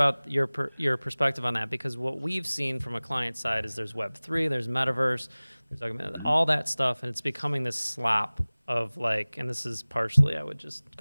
your perspective on that, because what we've seen from a client side is there's Web3, there's metaverse, there's all that stuff, and it's becoming this slop of like, and this is partially, I would just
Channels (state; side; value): inverted; both; correlation -1.00